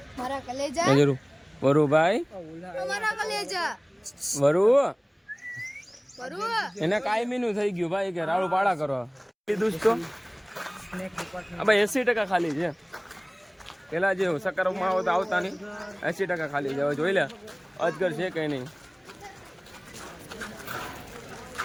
મારા કલેજા જરૂર વરુભાઈ મારા કલેજા વરુ પરુ એને કાયમીનું થઈ ગયું ભાઈ કે રાડું પાડા કરો લીધું તો ભાઈ 80% ખાલી છે પેલા જે સકારાત્મક આવો તો આવતા નહીં 80% ખાલી છે હવે જોઈ લે અજગર છે કઈ નહીં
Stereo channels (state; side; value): identical; both; correlation 1.00